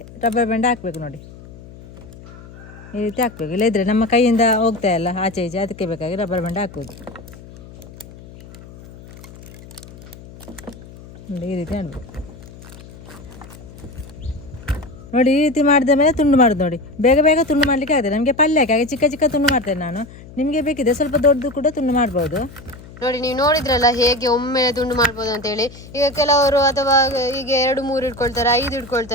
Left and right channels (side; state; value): left; noise; hum, 18 dB below the sound